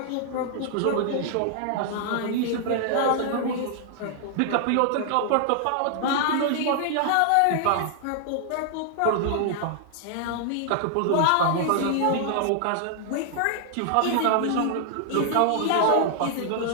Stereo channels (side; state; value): both; different; correlation 0.00